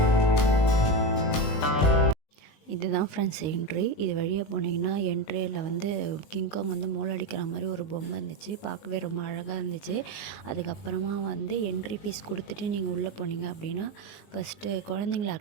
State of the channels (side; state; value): right; late; 20 ms